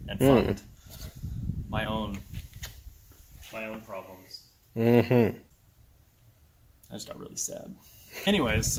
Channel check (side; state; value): both; identical; correlation 1.00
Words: and fund my own problems. Mm-hmm. I just got really sad. Anyways,